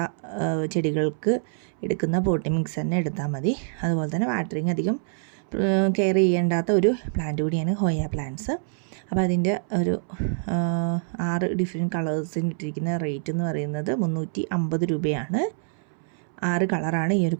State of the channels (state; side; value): silent; left; 61 dB below the other